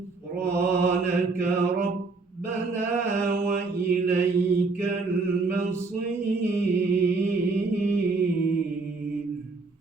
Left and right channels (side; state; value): left; quieter; 3.9 dB